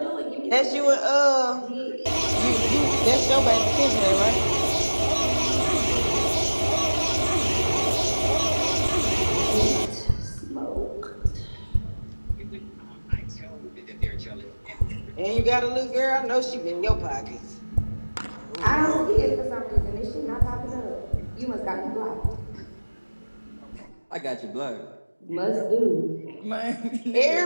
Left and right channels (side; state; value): both; inverted; correlation -1.00